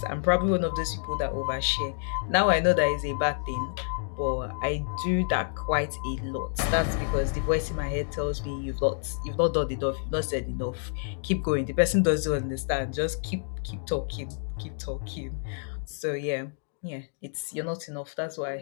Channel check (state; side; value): silent; right; 59 dB below the other